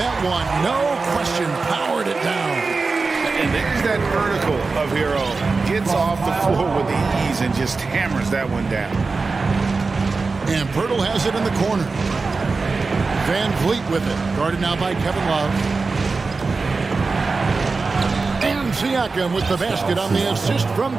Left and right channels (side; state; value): left; quieter; 4.1 dB